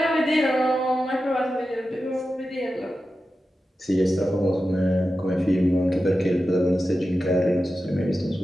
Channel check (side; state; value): both; normal; correlation 0.92